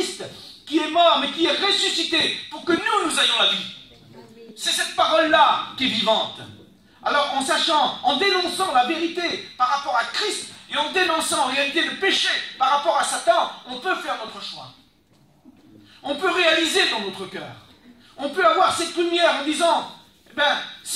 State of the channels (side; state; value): both; identical; correlation 1.00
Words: qui est mort mais qui est ressuscité pour que nous ayons la vie. C'est cette parole-là qui est vivante. Alors en dénonçant la vérité par rapport à Christ, et en dénonçant en réalité le péché par rapport à Satan, on peut faire notre choix. On peut réaliser dans notre cœur. On peut avoir cette lumière en disant,